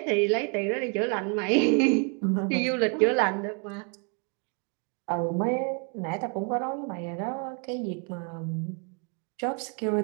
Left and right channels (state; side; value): quieter; left; 37.3 dB